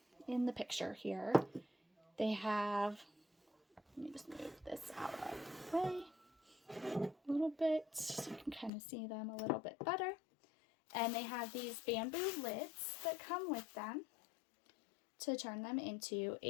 picture here, they have, let me just move this out of the way a little bit so you can kind of see them a little bit better. And they have these bamboo lids that come with them to turn them into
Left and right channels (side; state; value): right; drops out; at 8.7 s